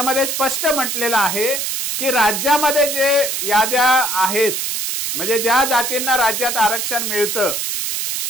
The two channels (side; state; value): right; noise; hiss, 2 dB below the sound